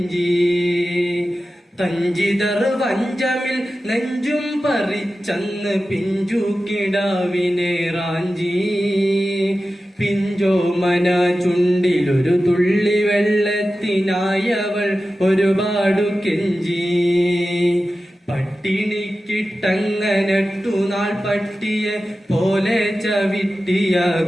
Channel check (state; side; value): normal; both; correlation 0.94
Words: തഞ്ചിതർ വഞ്ചമിൽ നെഞ്ചും പറിച്ചന്ന് പിഞ്ചു കിടാവിനെ റാഞ്ചി, പിഞ്ചോമന ചുണ്ടിലൊരു തുള്ളി വെള്ളത്തിനായവൾ ഒരുപാടു കെഞ്ചി. പട്ടിണിക്കിട്ടങ്ങനട്ടു നാൾ പട്ടിയെ പോലെ ചവിട്ടിയ